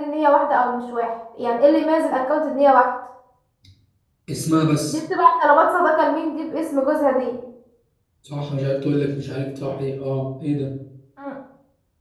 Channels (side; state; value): both; identical; correlation 1.00